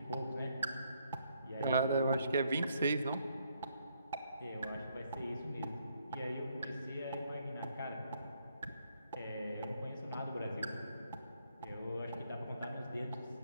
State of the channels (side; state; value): both; inverted; correlation -0.72